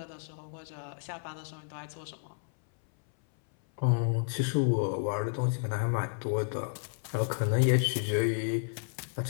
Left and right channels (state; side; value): silent; right; 57 dB below the other